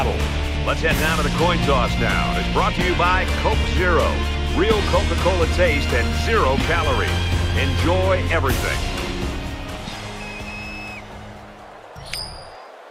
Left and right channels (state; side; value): identical; both; correlation 1.00